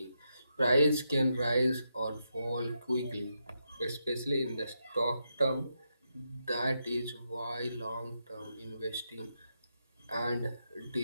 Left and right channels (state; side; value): inverted; both; correlation -0.83